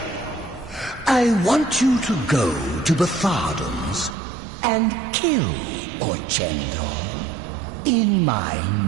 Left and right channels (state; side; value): drops out; left; at 4.2 s